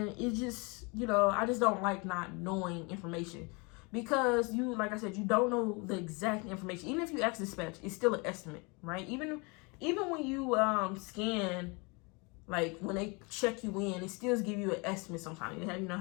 it just, I just don't like not knowing information. Because like I said, you don't know the exact information. Even if you ask dispatch, it's still an estimate, right? Even when you scan, like when they check you in, it still give you an estimate sometimes. They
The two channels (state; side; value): quieter; right; 29.4 dB